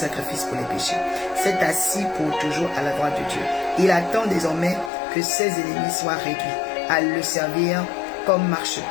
pour les péchés, s'est assis pour toujours à la droite de Dieu. Il attend désormais que ses ennemis soient réduits à le servir comme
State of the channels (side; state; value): right; drops out; at 4.9 s